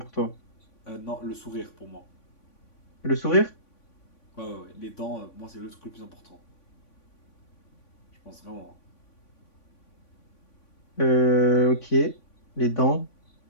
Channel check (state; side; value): late; right; 3.5 ms